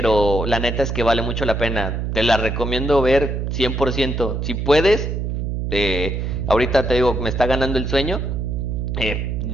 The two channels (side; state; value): right; noise; hum, 2 dB below the sound